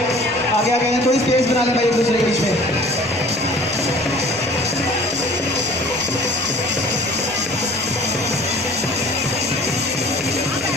आगे आगे हैं, थोड़ी स्पेस बना लें भाई एक दूसरे के बीच में।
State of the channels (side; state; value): left; noise; rumble, 25 dB below the sound